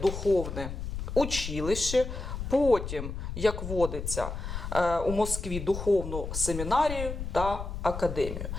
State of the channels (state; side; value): noise; left; rumble, 6 dB below the sound